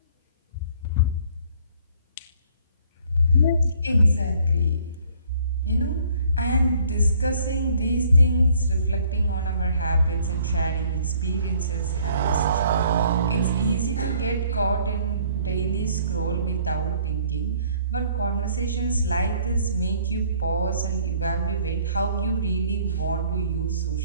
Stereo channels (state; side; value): inverted; both; correlation -0.59